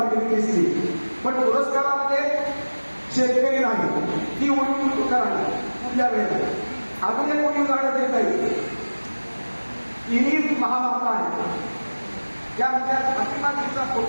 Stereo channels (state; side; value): inverted; both; correlation -1.00